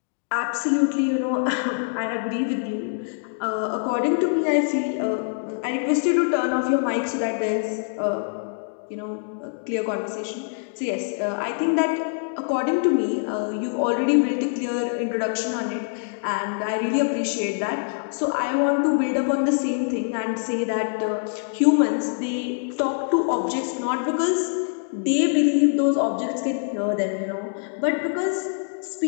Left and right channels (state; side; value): silent; right; digital silence